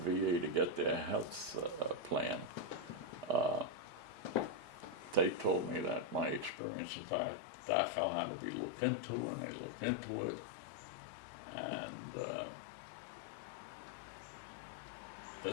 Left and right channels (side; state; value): right; drops out; at 6.6 s